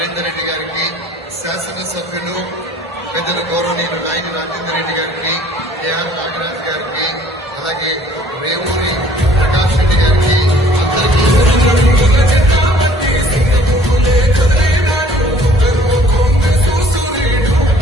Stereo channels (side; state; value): both; normal; correlation 0.55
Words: రెడ్డి గారికి, శాసనసభ్యులు పెద్దలు గౌరవనీయులు నాయని రాజేందర్ రెడ్డి గారికి, ఏఆర్ నాగరాజ్ గారికి, అలాగే రేవూరి ప్రకాష్ రెడ్డి గారికి